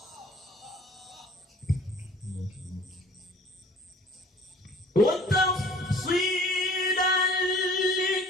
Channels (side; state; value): both; normal; correlation 0.51